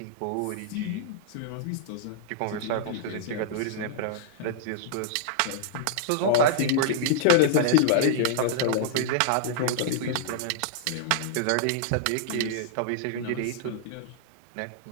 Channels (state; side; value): different; both; correlation -0.01